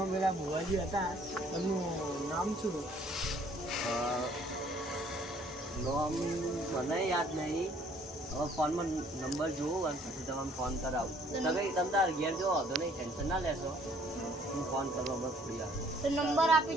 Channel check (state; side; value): normal; both; correlation 0.60